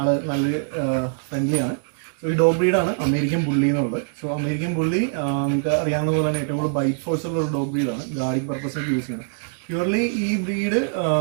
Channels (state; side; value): silent; left; digital silence